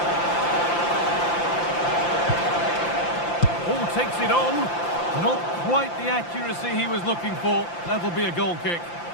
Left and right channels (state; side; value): late; right; 5.8 ms